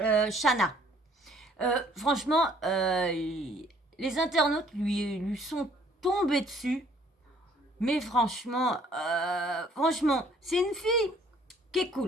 Shana. Franchement, les internautes lui sont tombés dessus. Mais franchement, c'est une fille qui est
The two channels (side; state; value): both; normal; correlation 0.60